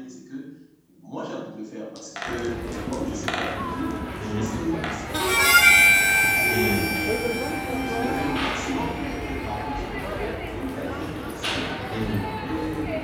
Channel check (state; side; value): identical; both; correlation 1.00